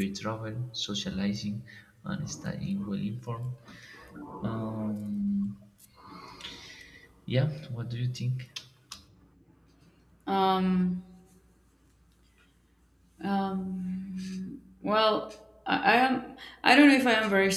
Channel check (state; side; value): identical; both; correlation 1.00